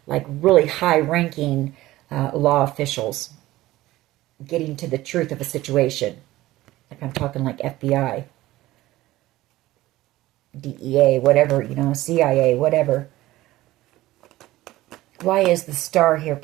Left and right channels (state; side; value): quieter; left; 16.9 dB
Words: like really high-ranking law officials getting to the truth of a situation. Like I'm talking like FBI, DEA, whatever, you know, CIA, whatever. Why is the Star here,